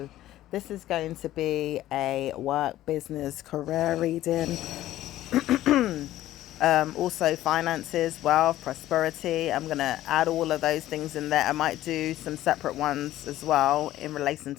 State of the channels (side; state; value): right; quieter; 14.2 dB